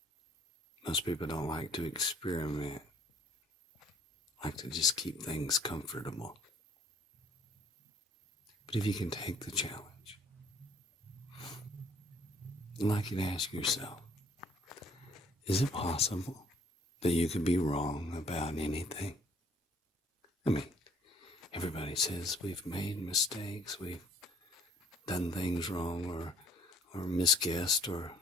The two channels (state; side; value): normal; both; correlation 0.60